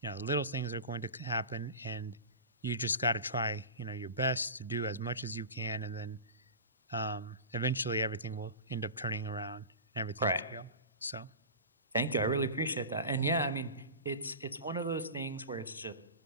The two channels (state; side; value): inverted; both; correlation -0.31